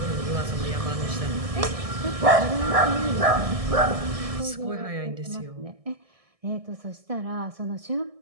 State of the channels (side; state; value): left; late; 1.6 ms